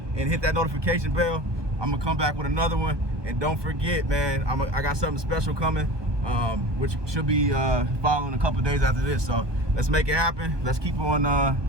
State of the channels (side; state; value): left; late; 1.2 ms